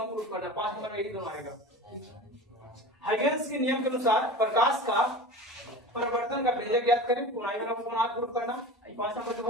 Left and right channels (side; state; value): both; normal; correlation 0.34